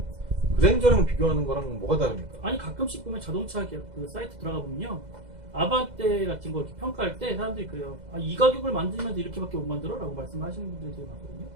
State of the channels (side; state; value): left; late; 2.0 ms